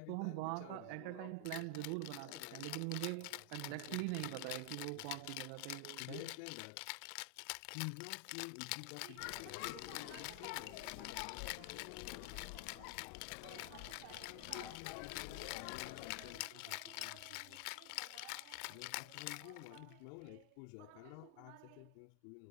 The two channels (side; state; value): both; different; correlation 0.00